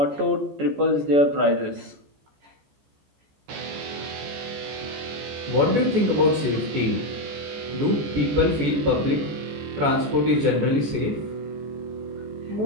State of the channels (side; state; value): left; late; 14 ms